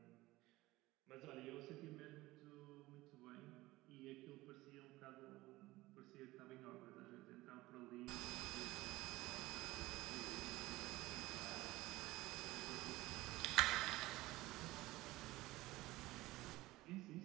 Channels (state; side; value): quieter; left; 18.7 dB